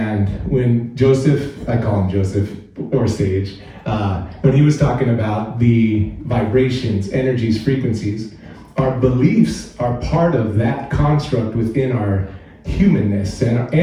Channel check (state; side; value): identical; both; correlation 1.00